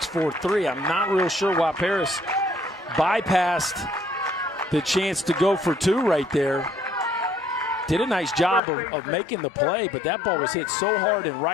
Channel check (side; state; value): right; drops out; at 8.6 s